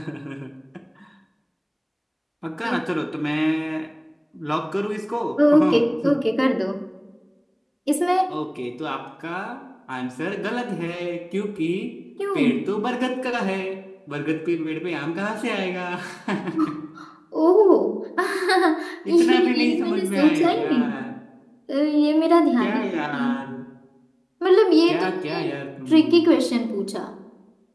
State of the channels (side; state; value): both; identical; correlation 1.00